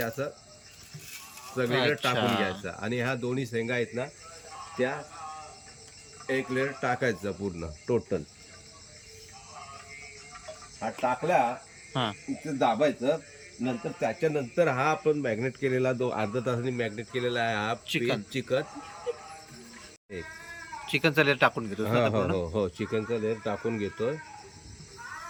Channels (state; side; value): identical; both; correlation 1.00